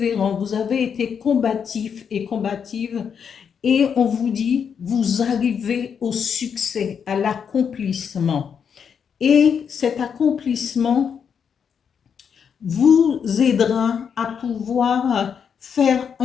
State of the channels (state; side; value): quieter; right; 7.1 dB